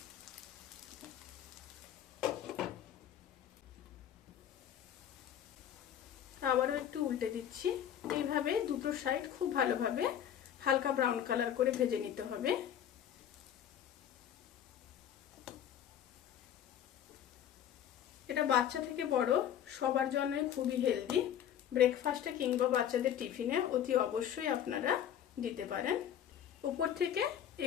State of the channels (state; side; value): quieter; right; 10.0 dB